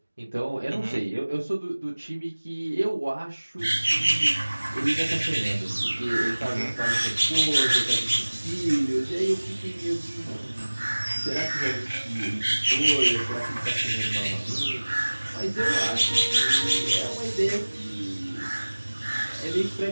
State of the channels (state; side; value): inverted; both; correlation -1.00